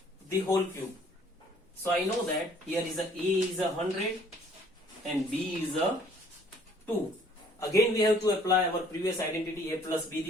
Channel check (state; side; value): normal; both; correlation 0.58